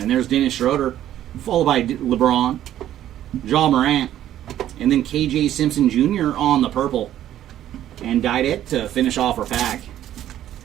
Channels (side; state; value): left; quieter; 12.0 dB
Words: there's Dennis Schroeder, followed by LeBron, Ja Morant, and then KJ Simpson Jr. on the purple. And Didet to finish off our pack.